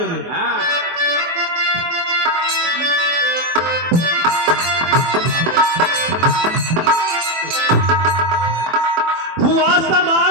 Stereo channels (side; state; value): left; late; 24 ms